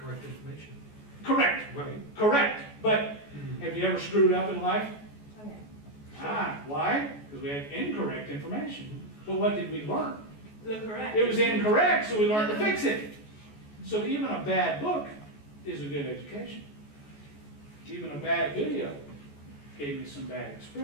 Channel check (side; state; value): right; late; 14 ms